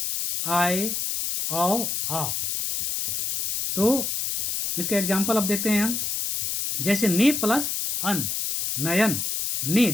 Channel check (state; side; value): noise; left; hiss, 2 dB below the sound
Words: आय औ आओ। तो इसका एग्जाम्पल अब देखते हैं हम, जैसे ने प्लस अन, नयन। ने